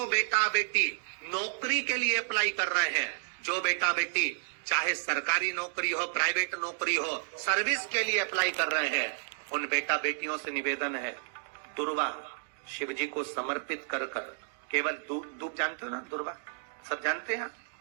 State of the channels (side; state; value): left; silent; digital silence